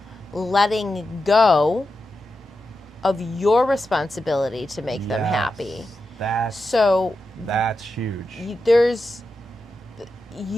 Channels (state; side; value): normal; both; correlation 0.89